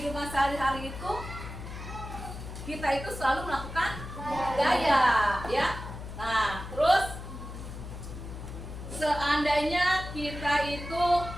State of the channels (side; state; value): left; noise; hum, 10 dB below the sound